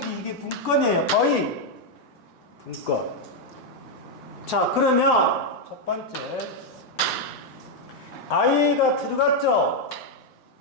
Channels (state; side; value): normal; both; correlation 0.00